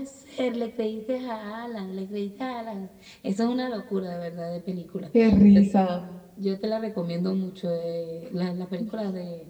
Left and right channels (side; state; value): both; identical; correlation 1.00